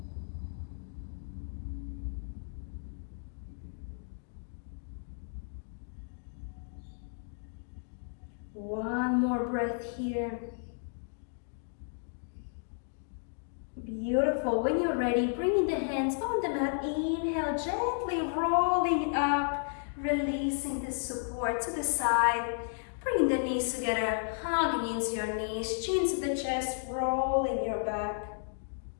One more breath here. Beautiful. When you're ready, bringing the hands on the mat. Inhale, gently rolling up, releasing the support to the side. Bringing the knees together, hugging into your knees, chin to the chest, rolling your back.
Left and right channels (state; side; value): silent; right; digital silence